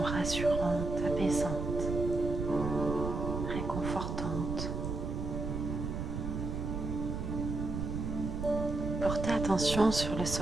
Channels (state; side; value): noise; right; rumble, 3 dB below the sound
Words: rassurantes, apaisantes, réconfortantes. Portez attention sur le